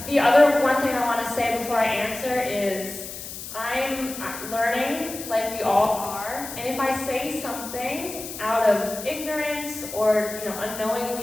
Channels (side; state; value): left; noise; hiss, 10 dB below the sound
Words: The other one thing I want to say before I answer is I'm learning, like we all are, and if I say something out of ignorance or